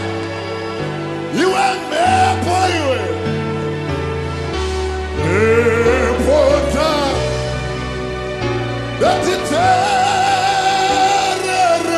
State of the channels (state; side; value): identical; both; correlation 1.00